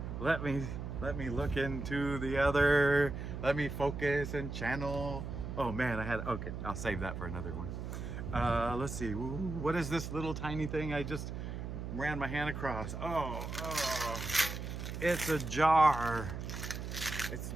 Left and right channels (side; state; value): right; noise; hum, 6 dB below the sound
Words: let me look into the other. Let me focus and channel. Oh man, okay, I'll save that for another one. Let's see. What is this little tiny thing I just ran my hand across? Oh, it's a jar. It's a